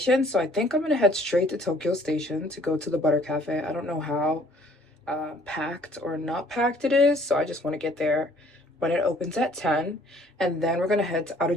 so I think I'm gonna head straight to Tokyo Station to go to the Butter Cafe. I don't know how packed or not packed it is, so I just want to get there when it opens at 10. And then we're gonna head to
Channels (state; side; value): normal; both; correlation 0.58